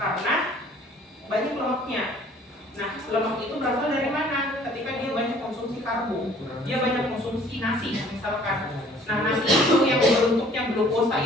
banyak lemaknya. Nah, lemak itu berasal dari mana? Ketika dia banyak konsumsi karbo, dia banyak konsumsi nasi misalkan. Nah, nasi itu yang bentuknya glukosa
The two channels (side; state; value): both; normal; correlation 0.55